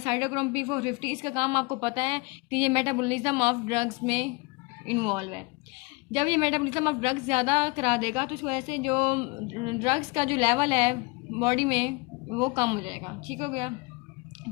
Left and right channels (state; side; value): quieter; right; 26.6 dB